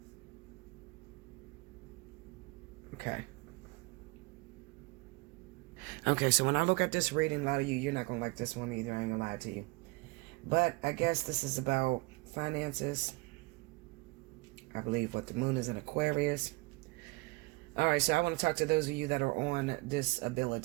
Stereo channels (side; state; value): left; quieter; 24.6 dB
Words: Okay, so when I look at this reading, a lot of you're not gonna like this one either, I ain't gonna lie to you. But I guess this is about finances. I believe what the moon is in Aquarius. All right, so I want to talk to those of you that are on